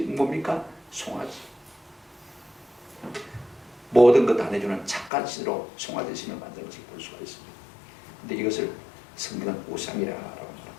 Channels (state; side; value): drops out; right; at 5.1 s